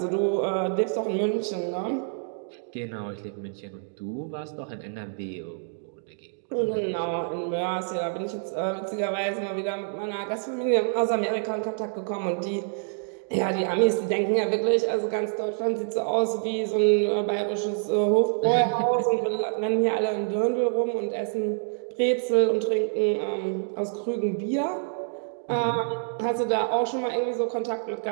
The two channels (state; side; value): silent; left; digital silence